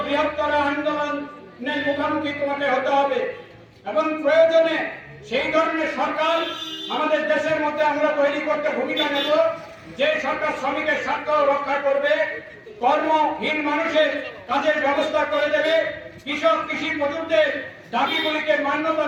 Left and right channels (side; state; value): both; identical; correlation 1.00